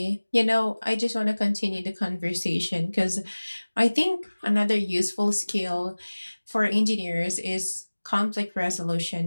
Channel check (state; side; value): inverted; both; correlation -1.00